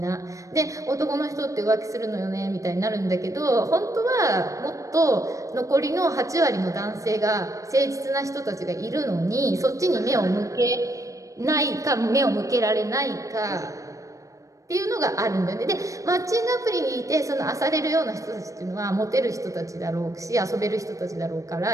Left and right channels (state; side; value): late; left; 0.16 ms